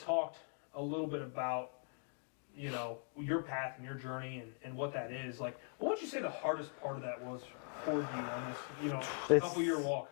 a little bit about, you know, your path and your journey and what that is. Like, what would you say the hardest part of that was for you on this, you know, couple-year walk?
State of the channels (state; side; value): silent; right; 50 dB below the other